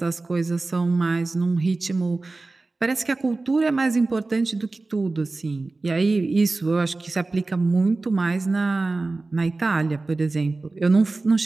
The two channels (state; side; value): quieter; left; 3.4 dB